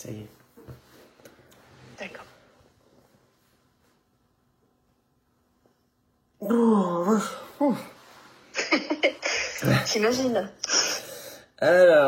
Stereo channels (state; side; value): identical; both; correlation 1.00